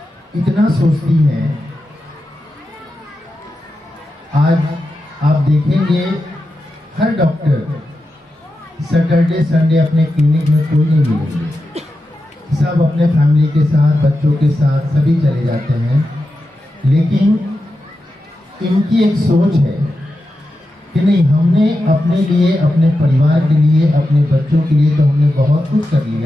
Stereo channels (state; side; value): normal; both; correlation 0.90